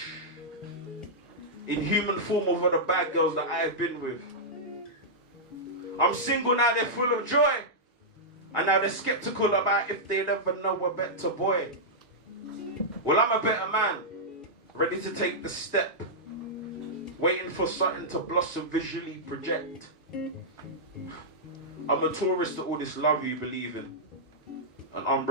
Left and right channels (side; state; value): both; normal; correlation -0.10